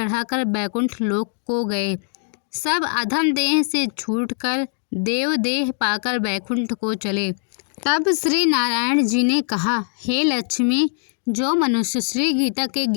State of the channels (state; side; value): silent; right; 63 dB below the other